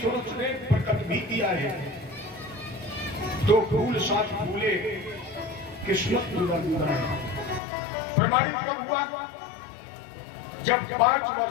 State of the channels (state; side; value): drops out; right; at 7.6 s